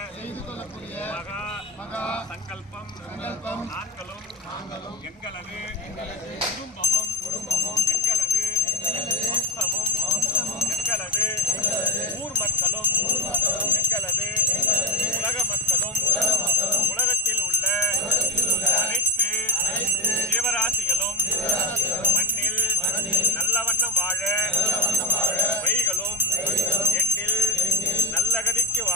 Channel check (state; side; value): normal; both; correlation 0.09